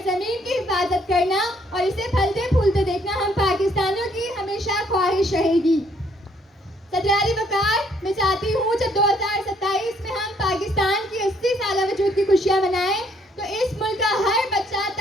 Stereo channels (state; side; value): normal; both; correlation 0.67